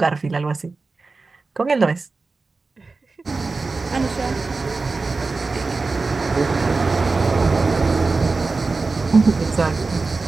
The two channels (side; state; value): left; quieter; 3.9 dB